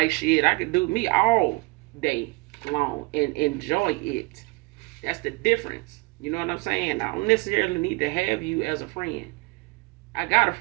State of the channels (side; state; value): left; quieter; 25.8 dB